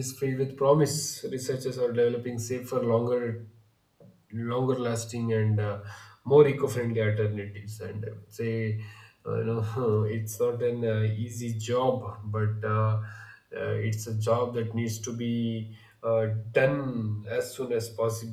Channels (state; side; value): identical; both; correlation 1.00